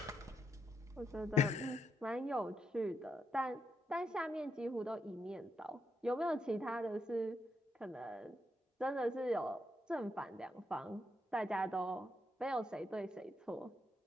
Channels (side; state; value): both; normal; correlation 0.81